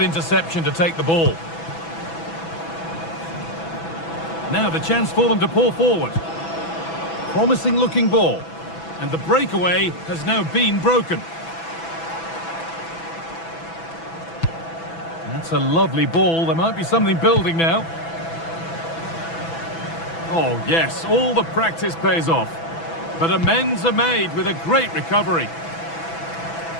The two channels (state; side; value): late; right; 6.0 ms